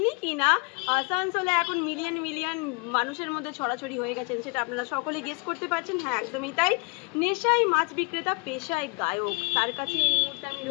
কিনা আসানসোলে এখন মিলিয়ন মিলিয়ন মানুষের মধ্যে ছড়াছড়ি হয়ে গেছেন, সেটা আপনারা সকলে গেস করতে পারছেন। হ্যাঁ, একদমই তাই। নেশায় মাছ বিক্রেতা, পেশায় গায়ক। তার কাছে এই মুহূর্তে আমি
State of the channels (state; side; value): quieter; right; 30.5 dB